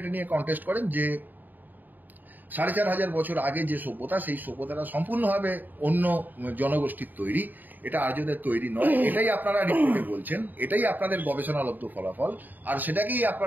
নিয়ে কন্টেস্ট করেন যে 4500 বছর আগে যে সভ্যতা, সেই সভ্যতাটা সম্পূর্ণভাবে অন্য জনগোষ্ঠীর তৈরি, এটা আর্যদের তৈরি নয়। এটাই আপনারা রিপোর্টে বলছেন, এটাই আপনাদের গবেষণালব্ধ ফলাফল, আর সেটাকেই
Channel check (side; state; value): left; late; 0.087 ms